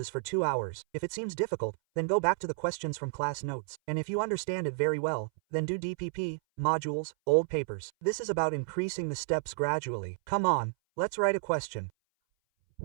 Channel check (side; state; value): left; silent; 57 dB below the other